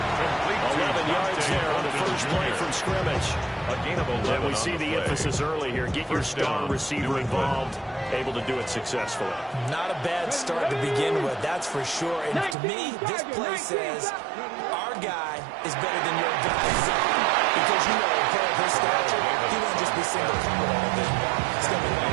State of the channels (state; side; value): drops out; left; at 12.6 s